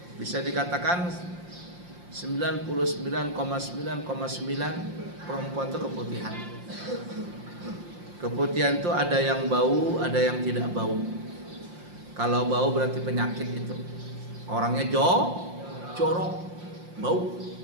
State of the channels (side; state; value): left; late; 5.7 ms